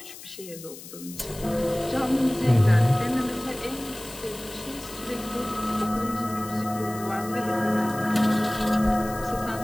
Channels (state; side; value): noise; left; hiss, 15 dB below the sound